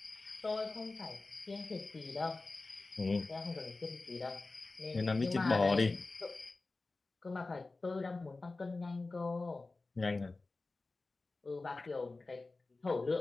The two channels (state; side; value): quieter; right; 3.5 dB